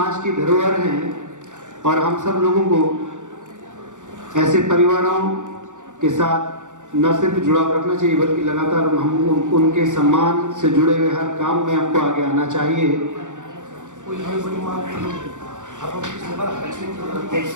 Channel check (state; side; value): late; left; 0.86 ms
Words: की धरोहर हैं, और हम सब लोगों को ऐसे परिवारों के साथ न सिर्फ जुड़ाव रखना चाहिए, बल्कि लगातार हम उनके सम्मान से जुड़े हुए हर काम में आपको आगे आना चाहिए।